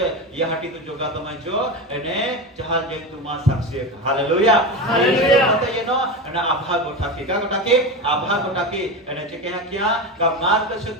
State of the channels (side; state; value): both; normal; correlation 0.21